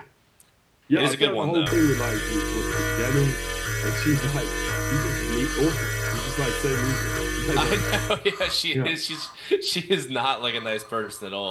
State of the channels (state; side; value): identical; both; correlation 1.00